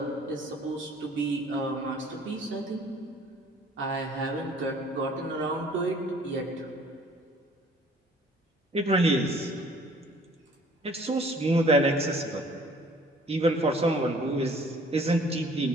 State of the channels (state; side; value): normal; both; correlation 0.54